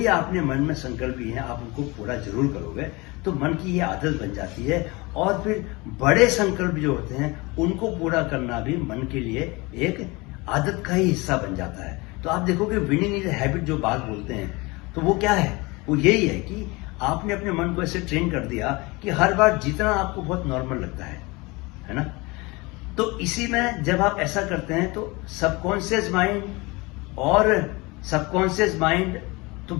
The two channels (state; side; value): quieter; right; 24.6 dB